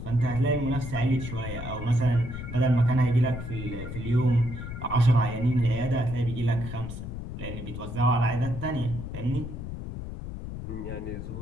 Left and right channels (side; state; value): left; noise; rumble, 8 dB below the sound